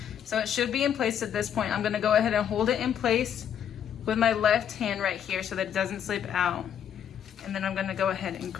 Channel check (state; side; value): quieter; right; 9.1 dB